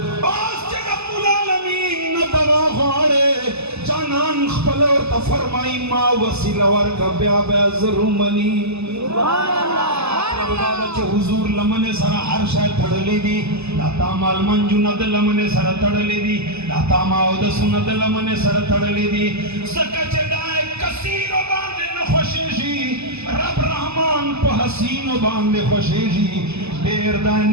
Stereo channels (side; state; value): left; late; 0.79 ms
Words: بس چے رب العالمین ندوا خوارے جانان خپل اور تفرمائی ما وسیلہ ورکا بیا بیا ضرومنی سبحان اللہ حضور لمن سر ہر شے تھڑلی دی لاتا مال منجو ند لمن سر تھڑلی دی لاتا ماو دسو ند لمن سر تھڑلی دی سکچ دائے کثیر و باندے نخوشیشی رب رحمان پہ حسین و باندے خوشیشی دیر دائے